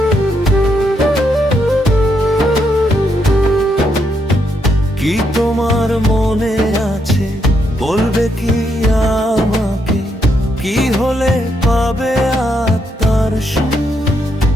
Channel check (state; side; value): normal; both; correlation 0.78